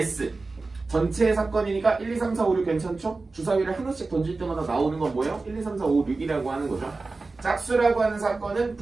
전체의 사건이니까 1, 2, 3, 4, 5, 6 괜찮죠? 주사위를 하나씩 던질 때마다 나오는 건 뭐예요? 1, 2, 3, 4, 5, 6이라고 하는 거죠. 짝수라고 하는 사건은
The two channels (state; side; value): quieter; left; 3.7 dB